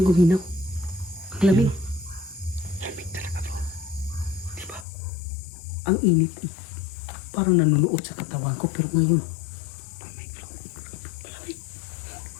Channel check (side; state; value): right; drops out; at 4.9 s